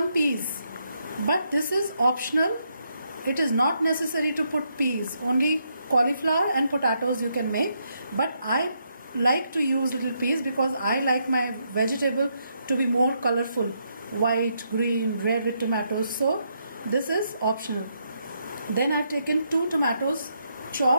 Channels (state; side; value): inverted; both; correlation -0.77